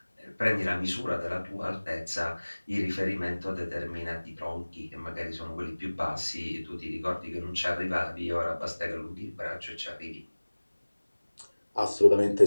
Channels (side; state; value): both; inverted; correlation -1.00